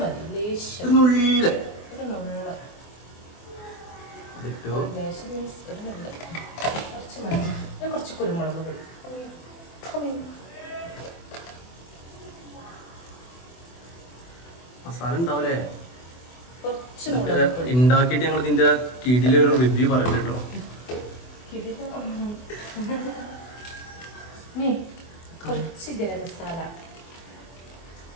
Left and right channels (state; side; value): late; right; 24 ms